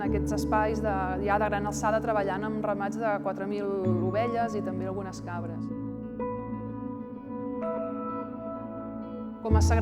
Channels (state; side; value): identical; both; correlation 1.00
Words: aquests espais ja de gran alçada treballant amb ramats de 4.000 ovelles i també algunes cabres. Com a